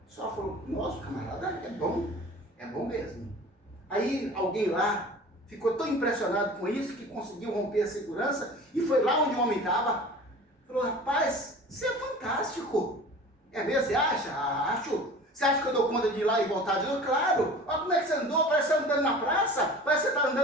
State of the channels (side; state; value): both; normal; correlation 0.41